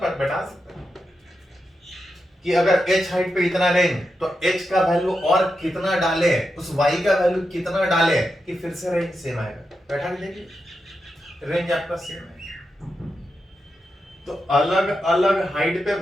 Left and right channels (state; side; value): normal; both; correlation 0.87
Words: बैठा सकते हैं कि अगर h हाइट पे इतना रेंज तो h का वैल्यू और कितना डाले, उस y का वैल्यू कितना डाले कि फिर से रेंज सेम आएगा। बैठा के देखिए, रेंज आपका सेम है। तो अलग अलग हाइट पे